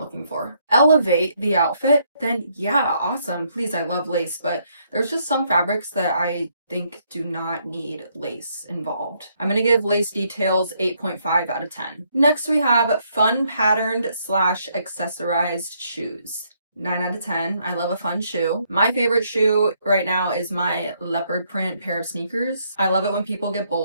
for? Elevate the outfit, then yeah, awesome. Please, I love lace, but there's just some fabrics that I think do not need lace involved. I'm gonna give lace details 8.5 out of 10. Next, we have fun patterned slash accessorized shoes. 9 out of 10. I love a fun shoe. My favorite shoe right now is my leopard print pair of sneakers. I love it when people get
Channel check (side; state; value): both; inverted; correlation -0.72